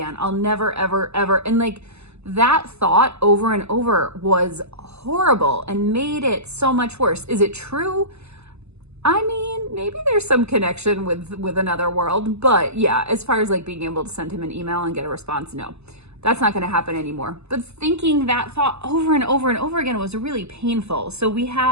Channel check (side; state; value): left; late; 0.80 ms